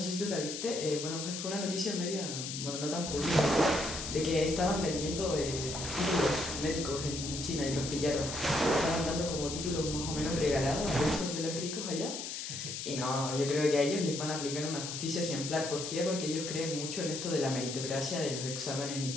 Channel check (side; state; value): left; noise; hiss, 6 dB below the sound